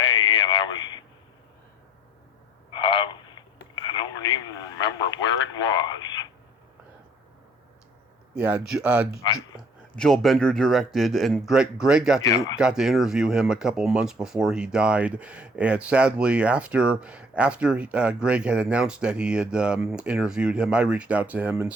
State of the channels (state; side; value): normal; both; correlation 0.58